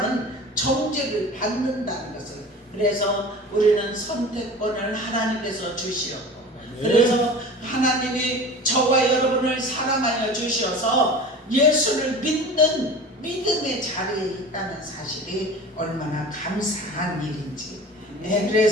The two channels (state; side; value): normal; both; correlation 0.37